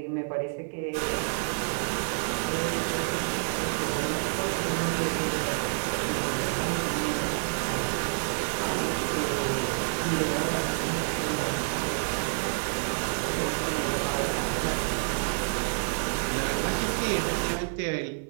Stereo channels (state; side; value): silent; left; digital silence